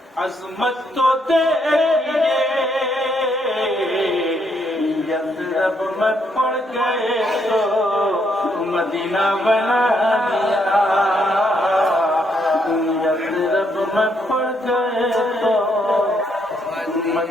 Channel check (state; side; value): normal; both; correlation 0.74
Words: عظمت تو تیرے یثرب میں پڑ گئے تو مدینہ بنا دیا. یثرب میں پڑ گئے تو